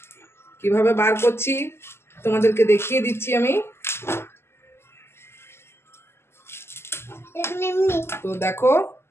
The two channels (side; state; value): right; late; 0.12 ms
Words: কিভাবে বার করছি তোমাদেরকে দেখিয়ে দিচ্ছি আমি। তো দেখো,